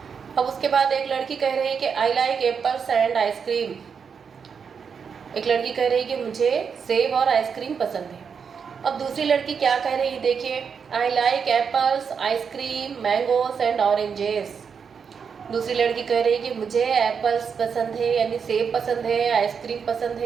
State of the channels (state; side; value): quieter; left; 6.4 dB